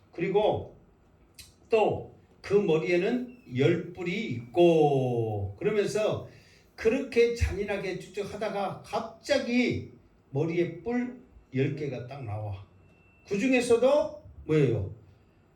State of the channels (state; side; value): identical; both; correlation 1.00